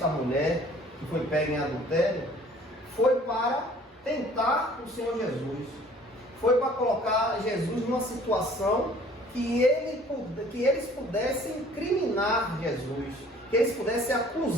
mulher que foi pega em adultério foi para tentar o Senhor Jesus. Foi para colocar Jesus numa situação que eles pudessem incriminar Jesus, que eles pudessem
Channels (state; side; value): normal; both; correlation 0.53